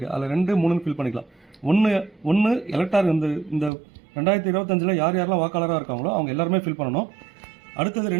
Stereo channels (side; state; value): left; drops out; at 3.7 s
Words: அதில் 2, 3 ஃபில் பண்ணிக்கலாம். ஒன்று எலக்டார் இந்த 2025 யார் யாரெல்லாம் வாக்காளராக இருக்காங்களோ அவங்க எல்லாருமே ஃபில் பண்ணணும். அடுத்தது